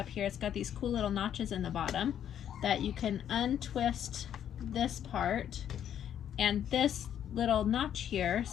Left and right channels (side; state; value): right; quieter; 9.9 dB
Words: here. It's got these cool little notches in the bottom that you can untwist this part, and this little notch here